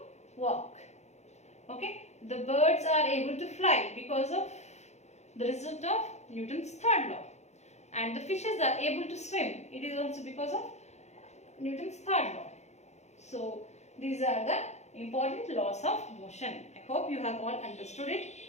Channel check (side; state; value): right; late; 0.33 ms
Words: walk. Okay. The birds are able to fly because of the result of Newton's third law. And the fishes are able to swim. It is also because of Newton's third law. So these are the important laws of motion. I hope you have all understood it.